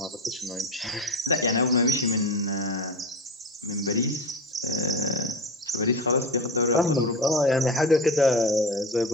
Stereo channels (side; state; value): both; normal; correlation 0.25